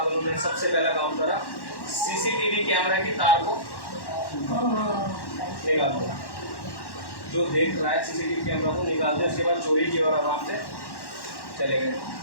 उन्होंने सबसे पहला काम करा, सीसीटीवी कैमरा की तार को निकाल दिया। जो देख रहा है सीसीटीवी कैमरा को निकाल दिया। उसके बाद चोरी की और आराम से चले गए।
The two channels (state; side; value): late; right; 1.1 ms